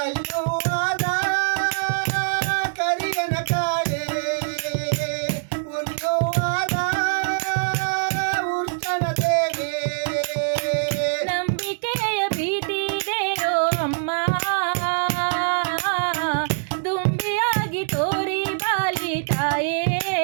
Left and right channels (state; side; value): silent; left; digital silence